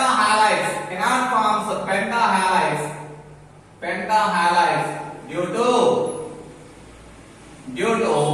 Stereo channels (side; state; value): both; identical; correlation 1.00